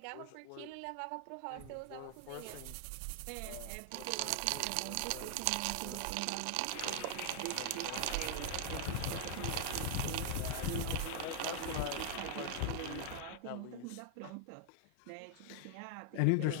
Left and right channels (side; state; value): both; different; correlation 0.00